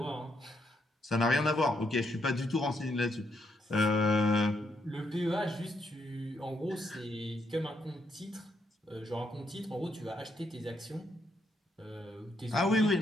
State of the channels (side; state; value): both; normal; correlation 0.76